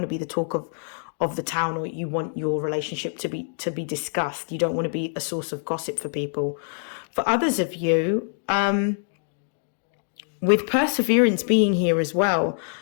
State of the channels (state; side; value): silent; right; digital silence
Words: to be the talk of the town, or you want your relationship to be discussed. You don't want to be a source of gossip for people. For others of you, with perseverance being here as well,